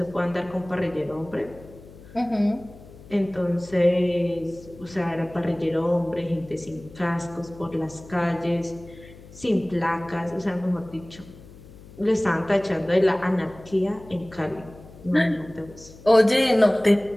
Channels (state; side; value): noise; left; hum, 20 dB below the sound